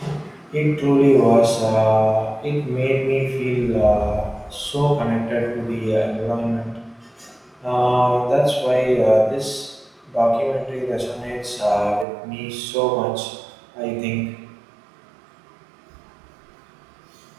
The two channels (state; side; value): drops out; left; at 12.1 s